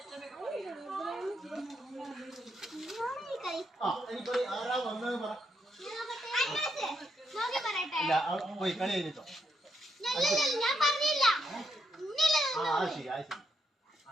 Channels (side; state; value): both; normal; correlation 0.79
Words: ആരാ വന്നത് പറ. പോയി കളി കഴിഞ്ഞിട്ടോ.